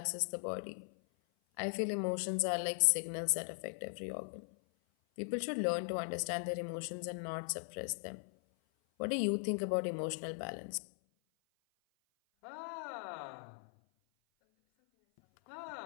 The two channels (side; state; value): right; silent; 52 dB below the other